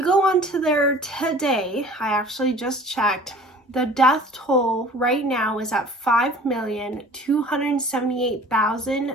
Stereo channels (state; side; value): normal; both; correlation 0.46